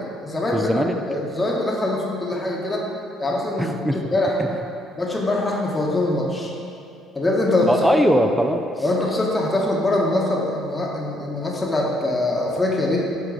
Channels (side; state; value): both; normal; correlation 0.74